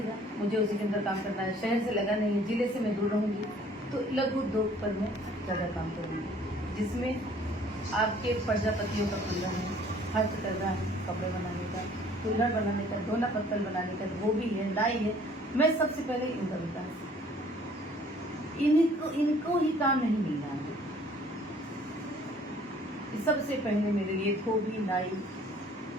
मुझे उसी के अंदर काम करना है। शहर से लगा नहीं है, जिले से मैं दूर रहूँगी, तो लघु उद्योग पर मैं ज़्यादा काम करूँगी, जिसमें आपके प्रजापतियों का खुल रहा है, हस्तकला है, कपड़े बनाने का, कुल्हड़ बनाने का, दोना पत्तल बनाने का, गोभी है, लाई है। मैं सबसे पहले इनका विकास, इनको ही काम नहीं मिल रहा है। सबसे पहले मेरे लिए धोबी, नाई,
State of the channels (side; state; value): both; normal; correlation 0.56